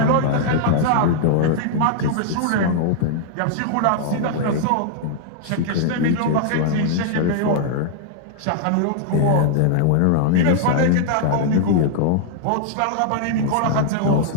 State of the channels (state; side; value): different; both; correlation 0.00